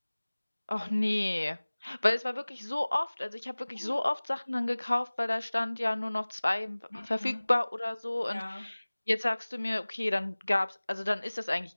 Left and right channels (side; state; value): both; inverted; correlation -1.00